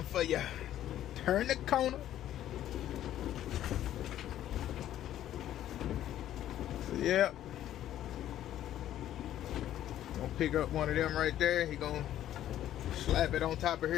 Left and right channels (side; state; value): right; quieter; 12.1 dB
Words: for you. Turn the corner. So yeah. Gonna pick up one of them right there. He gonna slap it on top of